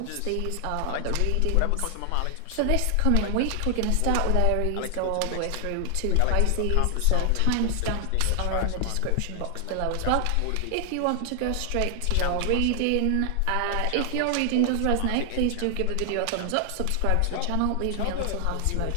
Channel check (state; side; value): different; both; correlation 0.00